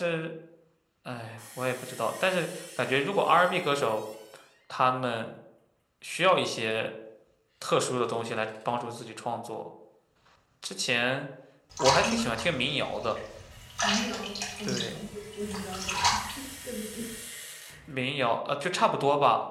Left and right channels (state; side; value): identical; both; correlation 1.00